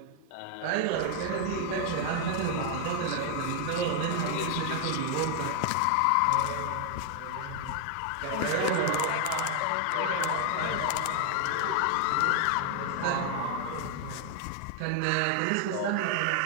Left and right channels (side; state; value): both; different; correlation 0.00